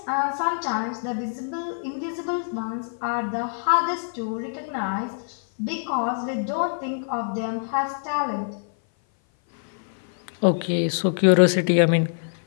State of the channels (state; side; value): silent; right; 57 dB below the other